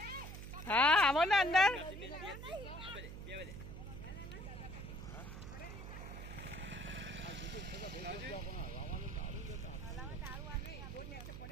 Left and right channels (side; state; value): right; noise; hum, 9 dB below the sound